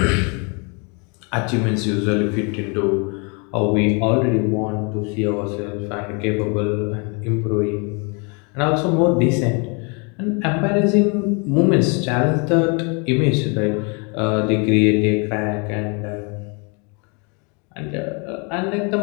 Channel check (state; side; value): quieter; right; 33.7 dB